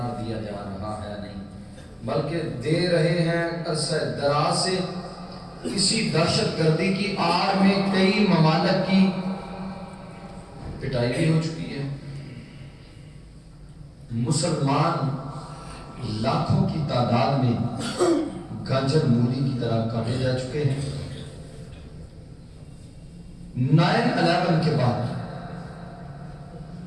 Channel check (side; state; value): both; identical; correlation 1.00